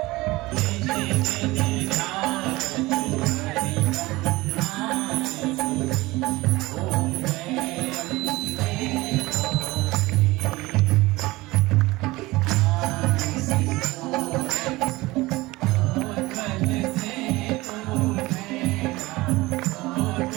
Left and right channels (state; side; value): quieter; left; 20.4 dB